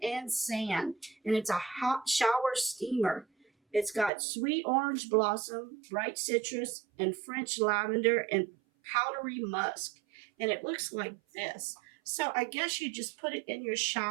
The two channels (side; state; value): left; drops out; at 4.1 s